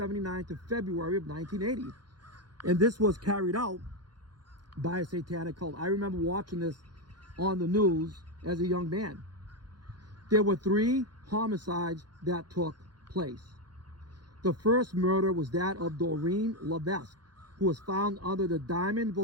to February of 1980. And this was carried out by a satanic cult. I remember watching this on the news as a young man. There were 3 homicides that took place. The first murder was that of Doreen Levesque, who was found under the Diamond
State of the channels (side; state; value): left; late; 0.70 ms